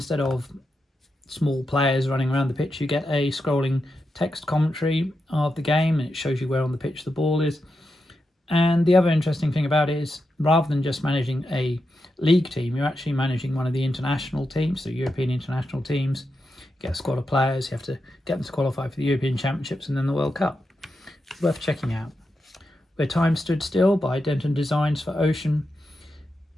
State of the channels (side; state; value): both; normal; correlation 0.87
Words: of small players running around the pitch, you get a scrolling text commentary of the game, and it shows you where on the pitch the ball is. And the other interesting thing about it is, rather than just managing a league team, you're actually managing one of the international teams, so European international teams. You get a squad of players, you have to get them to qualify for the European Championships and then the World Cup. It's worth checking out. Where Time Stood Still by Denton Designs for Ocean